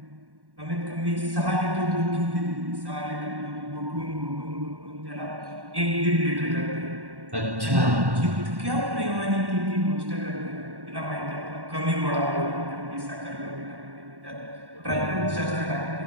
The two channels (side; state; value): left; late; 1.1 ms